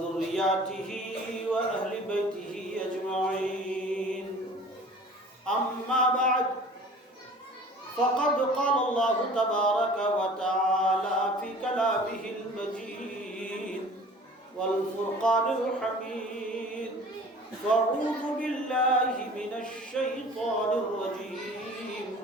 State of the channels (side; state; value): both; normal; correlation 0.46